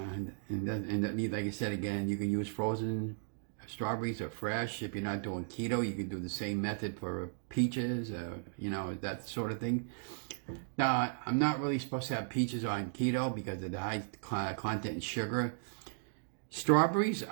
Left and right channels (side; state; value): left; silent; digital silence